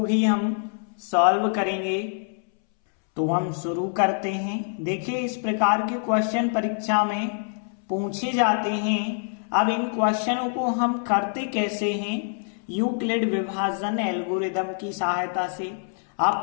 भी हम सॉल्व करेंगे। तो हम शुरू करते हैं। देखिए, इस प्रकार के क्वेश्चन परीक्षा में पूछे जाते हैं। अब इन क्वेश्चनों को हम करते कैसे हैं? यूक्लिड विभाजन एल्गोरिदम की सहायता से।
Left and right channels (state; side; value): silent; right; 62 dB below the other